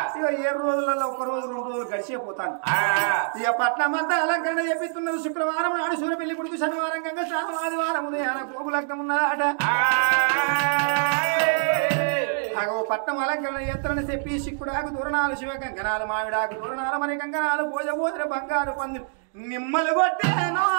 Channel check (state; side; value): silent; left; digital silence